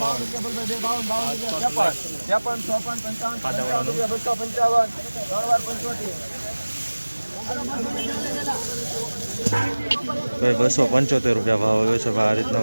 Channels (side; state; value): both; inverted; correlation -1.00